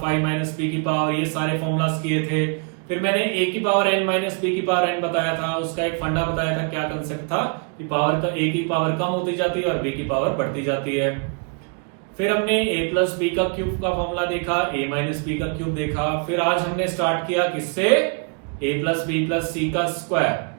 माइनस बी की पावर, ये सारे फॉर्मूलाज किए थे। फिर मैंने ए की पावर एन माइनस बी की पावर एन बताया था, उसका एक फंडा बताया था। क्या कंसेप्ट था कि पावर का ए की पावर कम होती जाती है और बी की पावर बढ़ती जाती है। फिर हमने ए प्लस बी का क्यूब का फॉर्मूला देखा, ए माइनस बी का क्यूब देखा। फिर आज हमने स्टार्ट किया किससे, ए प्लस बी प्लस सी का स्क्वायर।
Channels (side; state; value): left; quieter; 39.2 dB